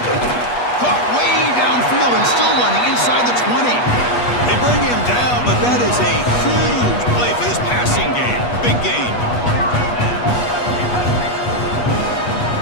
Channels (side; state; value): right; late; 8.3 ms